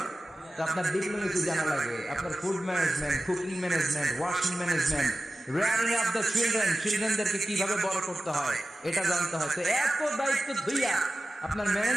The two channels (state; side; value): normal; both; correlation 0.94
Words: আপনার ডিপ্লোমেসি জানা লাগে, আপনার food management, cooking management, washing management, rearing up the children, চিলড্রেনদেরকে কিভাবে বড় করতে হয় এটা জানতে হয়। তো এত দায়িত্ব ধুইয়া আপনার